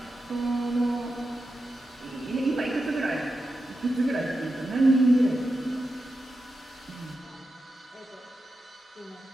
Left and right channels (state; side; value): normal; both; correlation 0.89